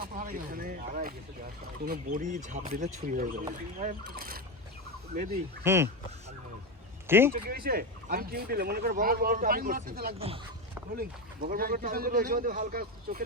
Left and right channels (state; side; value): normal; both; correlation 0.15